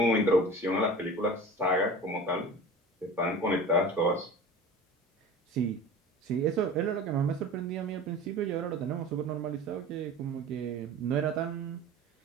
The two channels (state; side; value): normal; both; correlation 0.37